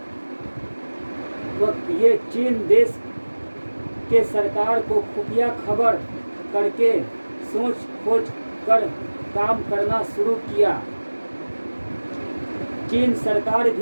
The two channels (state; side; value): inverted; both; correlation -1.00